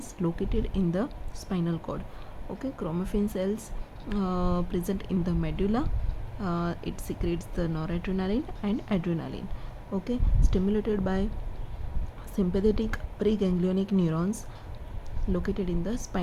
located in the spinal cord. Okay, chromaffin cells present in the medulla, it secretes the noradrenaline and adrenaline. Okay, stimulated by sympathetic preganglionic neurons located in the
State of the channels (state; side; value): identical; both; correlation 1.00